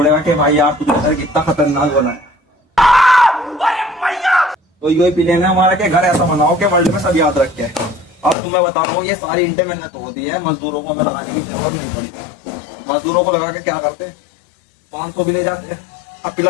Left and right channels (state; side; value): drops out; right; at 8.3 s